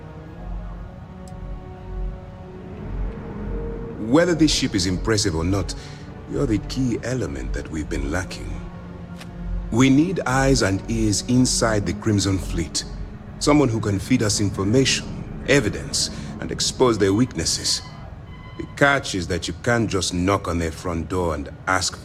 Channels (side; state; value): both; identical; correlation 1.00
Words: Whether this ship is impressive or not, you're the key element that we've been lacking. We need eyes and ears inside the Crimson Fleet. Someone who can feed us information, evidence, and expose their weaknesses. The catch is that you can't just knock on their front door and ask